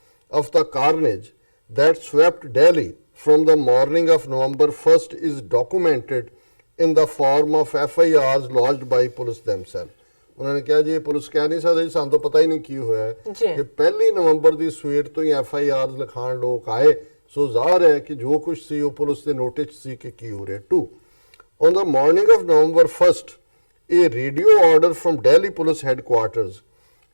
of the carnage that swept Delhi from the morning of November 1st is documented in the form of FIRs lodged by police themselves। उन्होंने कहा जी police कह नहीं सकती सानू तो पता ही नहीं की होया है कि 1 नवंबर की सवेर तो ही FIRs लिखाण लोग आए। सो ज़ाहिर है कि जो कुछ सी वो पुलिस के नोटिस सी कि की हो रहा है। 2 on the morning of November 1st a radio order from Delhi Police Headquarters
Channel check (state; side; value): inverted; both; correlation -1.00